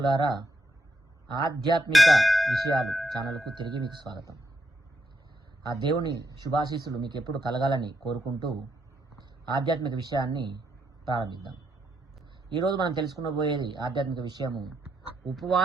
ఆధ్యాత్మిక విషయాలు ఛానల్కు తిరిగి మీకు స్వాగతం. ఆ దేవుని శుభాశీస్సులు మీకు ఎప్పుడు కలగాలని కోరుకుంటూ ఆధ్యాత్మిక విషయాన్ని ప్రారంభిద్దాం. ఈరోజు మనం తెలుసుకునబోయేది ఆధ్యాత్మిక విషయము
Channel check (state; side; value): normal; both; correlation 0.78